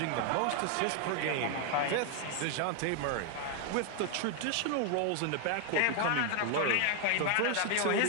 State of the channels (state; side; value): different; both; correlation 0.01